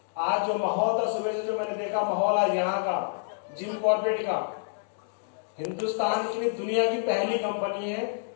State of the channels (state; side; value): silent; right; digital silence